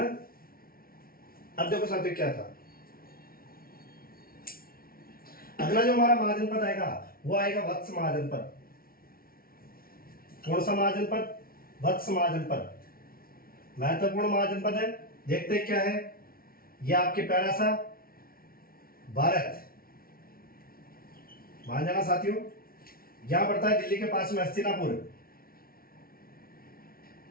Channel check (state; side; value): late; right; 0.43 ms